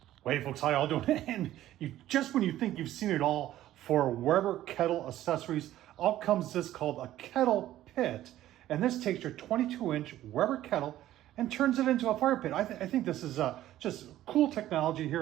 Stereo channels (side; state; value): left; quieter; 13.7 dB